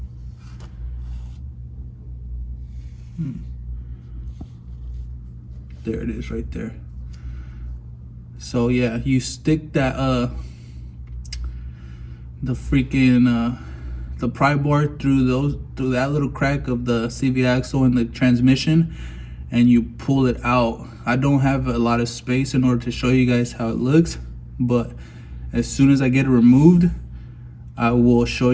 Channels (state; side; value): identical; both; correlation 1.00